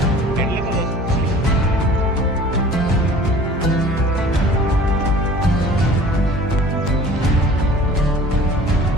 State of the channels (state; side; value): normal; both; correlation 0.47